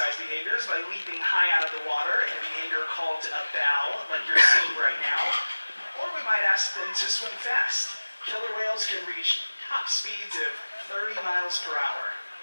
behaviors by leaping high out of the water in a behavior called a bow, like you're seeing right now. Or we might ask them to swim fast. Killer whales can reach top speeds of 30 miles per hour.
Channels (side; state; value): both; inverted; correlation -1.00